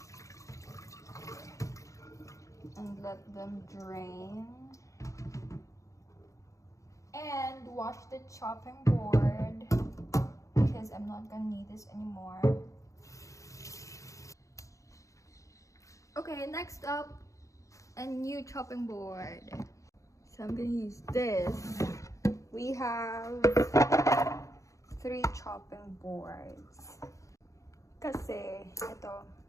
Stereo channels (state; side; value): late; right; 0.15 ms